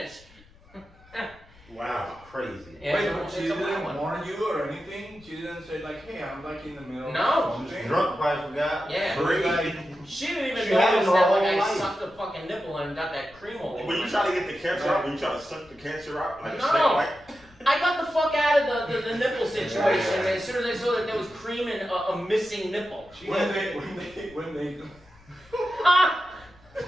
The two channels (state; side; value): noise; left; rumble, 26 dB below the sound